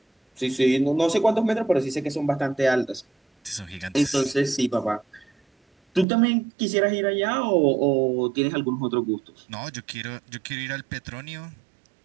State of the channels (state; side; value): drops out; left; at 6.1 s